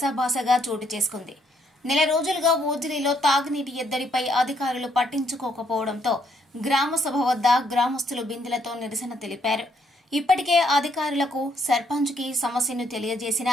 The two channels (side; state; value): both; normal; correlation 0.71